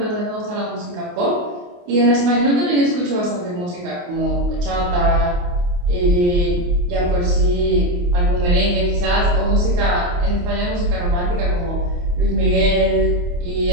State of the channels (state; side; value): late; left; 28 ms